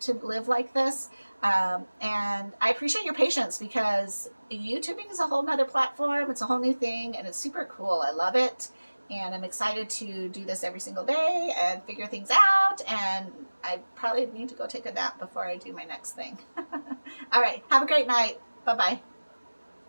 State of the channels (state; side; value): inverted; both; correlation -1.00